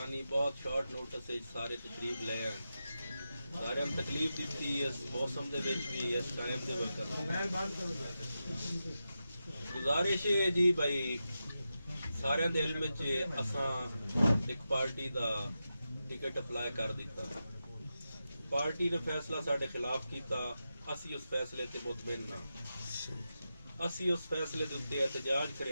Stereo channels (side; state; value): both; inverted; correlation -0.90